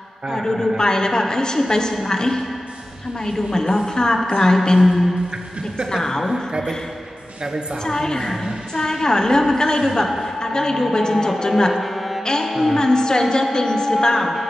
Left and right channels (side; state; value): both; normal; correlation 0.95